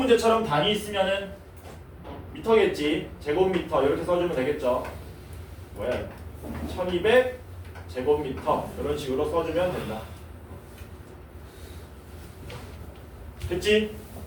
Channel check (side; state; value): both; identical; correlation 1.00